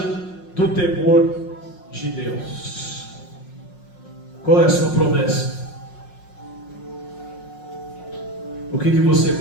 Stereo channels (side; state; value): right; late; 5.5 ms